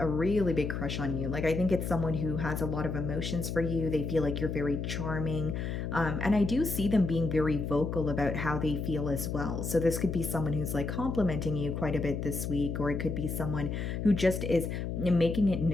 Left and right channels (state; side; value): noise; left; hum, 3 dB below the sound